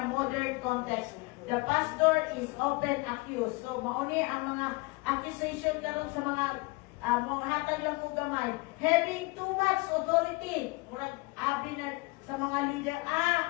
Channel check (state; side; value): quieter; right; 25.3 dB